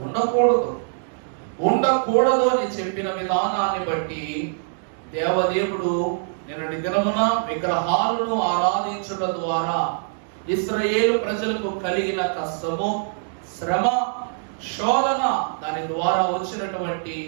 ఉండకూడదు. ఉండకూడదు అని చెప్పిన విధానాన్ని బట్టి దేవదేవుడు నిన్నటి దినమున విగ్రహాలను ఆరాధించుట ద్వారా ఇశ్రాయేలు ప్రజలకు కలిగిన కష్టము, శ్రమ, శోధన, దాని ద్వారా వచ్చినటువంటి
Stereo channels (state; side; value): silent; left; digital silence